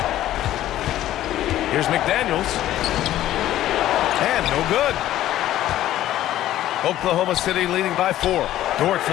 Here's McDaniels. And no good. Oklahoma City leading by 4. Dort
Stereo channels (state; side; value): quieter; right; 13.5 dB